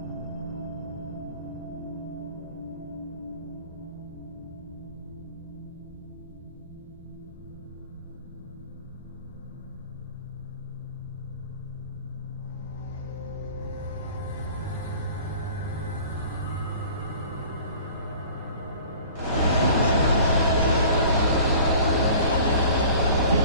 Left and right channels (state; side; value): inverted; both; correlation -0.45